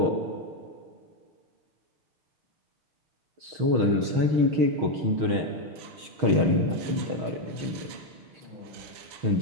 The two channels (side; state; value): left; late; 6.4 ms